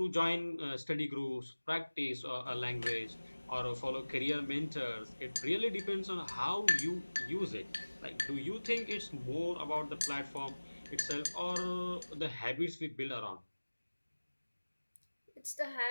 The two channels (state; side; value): inverted; both; correlation -1.00